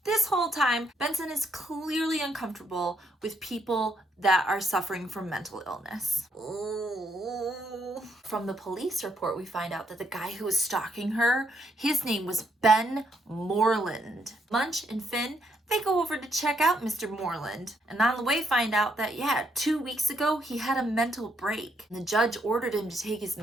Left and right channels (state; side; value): normal; both; correlation 0.75